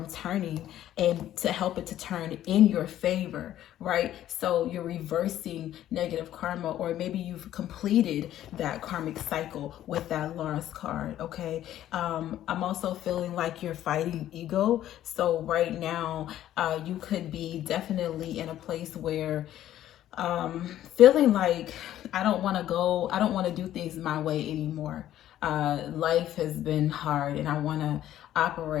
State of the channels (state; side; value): quieter; right; 12.5 dB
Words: turning, and to help it to turn in your favor, right? So you're reversing negative karma, or maybe you've completed that karmic cycle with that lost card, okay? I'm also feeling like you're fighting ego. So right now, you could be definitely in a place where feeling like I don't want to do things my way anymore. Life has been hard, and I want to